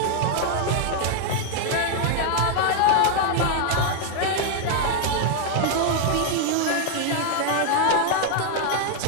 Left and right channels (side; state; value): both; different; correlation 0.00